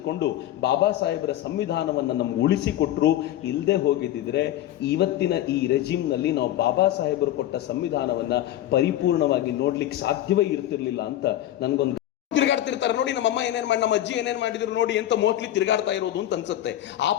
ಬಾಬಾ ಸಾಹೇಬರ ಸಂವಿಧಾನವನ್ನ ನಮ್ಗೆ ಉಳಿಸಿಕೊಟ್ರು. ಇಲ್ಲದೆ ಹೋಗಿದ್ದಿದ್ರೆ ಇವತ್ತಿನ ಈ ರೆಜಿಮ್ ನಲ್ಲಿ ನಾವು ಬಾಬಾ ಸಾಹೇಬರು ಕೊಟ್ಟ ಸಂವಿಧಾನವನ್ನ ಪರಿಪೂರ್ಣವಾಗಿ ನೋಡ್ಲಿಕ್ಕೆ ಸಾಧ್ಯವೇ ಇರ್ತಿರ್ಲಿಲ್ಲ ಅಂತ ನನ್ಗೊಂದು ತಿರುಗಾಡ್ತಿರ್ತಾರೆ. ನೋಡಿ ನಮ್ಮಮ್ಮ ಏನೇನ್ ಮಾಡಿ, ನಮ್ಮ ಅಜ್ಜಿ ಏನೇನ್ ಮಾಡಿದ್ರು ನೋಡಿ ಅಂತ ಮೋಸ್ಟ್ಲಿ ತಿರುಗಾಡ್ತಾ ಇರೋದು ಅಂತ ಅನ್ಸುತ್ತೆ. ಆ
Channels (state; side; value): quieter; right; 13.1 dB